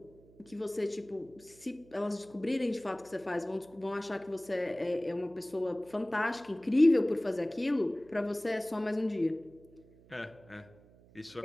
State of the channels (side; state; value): right; noise; hum, 25 dB below the sound